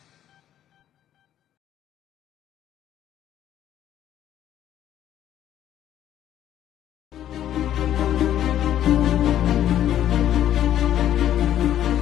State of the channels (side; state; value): right; quieter; 11.4 dB